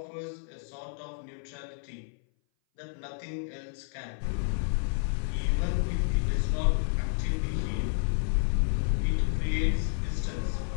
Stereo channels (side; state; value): right; silent; 58 dB below the other